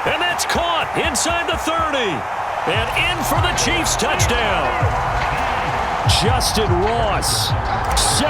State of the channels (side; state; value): both; identical; correlation 1.00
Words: And that's caught inside the 30. And in for the Chiefs touchdown. Justin Ross,